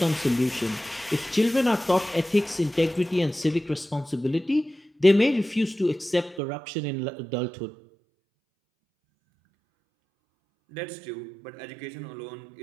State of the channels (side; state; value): left; drops out; at 6.4 s